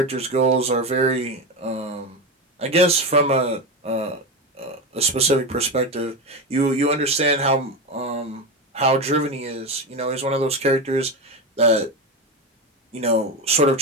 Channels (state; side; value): normal; both; correlation 0.17